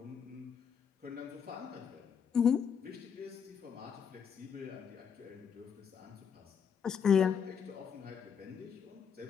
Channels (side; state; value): right; quieter; 7.2 dB